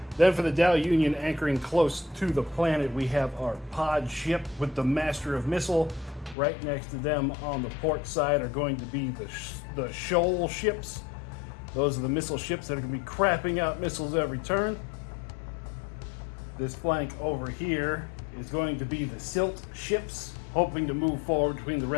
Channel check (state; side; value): drops out; right; at 6.4 s